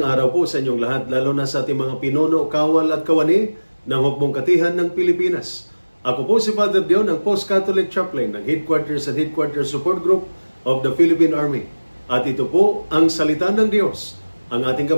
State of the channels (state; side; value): inverted; both; correlation -1.00